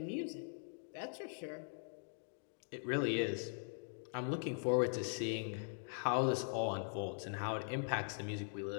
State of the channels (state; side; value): silent; right; digital silence